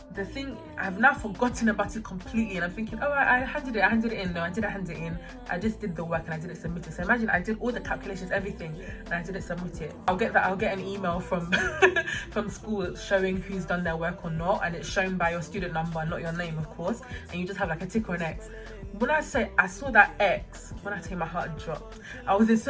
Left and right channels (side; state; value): both; identical; correlation 1.00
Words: the thing, I've now forgotten about it completely, and I'm thinking, oh, I handed it in. No, I didn't hand it in. I just did the work and I didn't submit it. So imagine I did all the calculations, everything, and I didn't submit it. I'll get an email from from school showing who's done their work or not, and it's shown by your student number, not your name, of course, and you just have like a tick or an X. When I say I saw that X, when I tell you my heart dropped, I was in